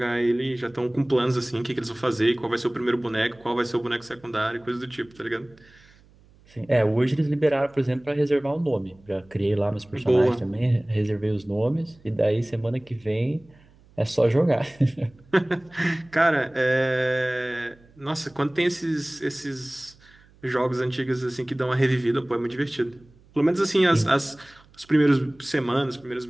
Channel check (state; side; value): noise; right; hum, 28 dB below the sound